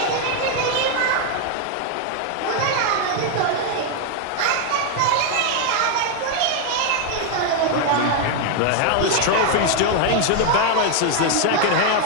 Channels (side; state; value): both; different; correlation 0.01